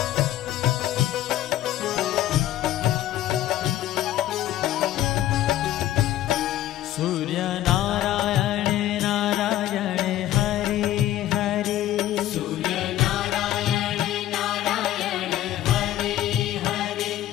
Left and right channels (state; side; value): quieter; right; 13.4 dB